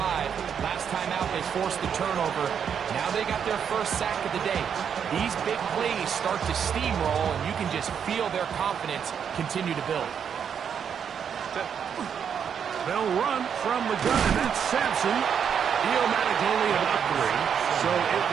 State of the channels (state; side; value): quieter; left; 7.7 dB